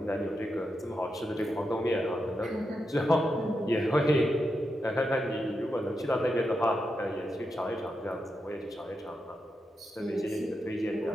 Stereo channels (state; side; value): normal; both; correlation 0.86